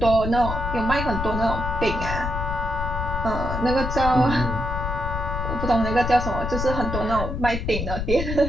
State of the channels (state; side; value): noise; left; rumble, 3 dB below the sound